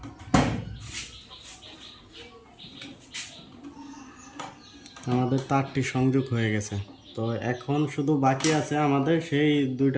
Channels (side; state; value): both; identical; correlation 1.00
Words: আমাদের তারটি সংযোগ হয়ে গেছে। তো এখন শুধু বাকি আছে আমাদের সেই